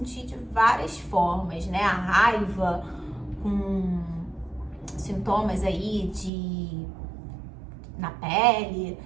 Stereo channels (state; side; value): drops out; left; at 6.3 s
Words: de várias formas, né? A raiva com sintomas aí na pele,